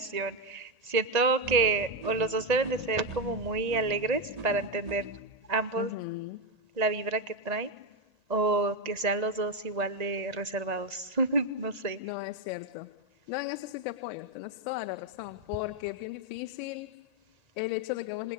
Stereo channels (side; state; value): left; late; 1.8 ms